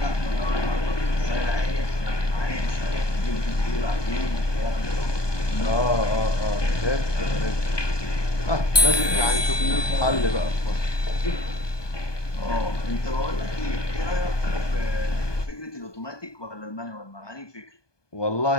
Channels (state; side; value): late; right; 1.2 ms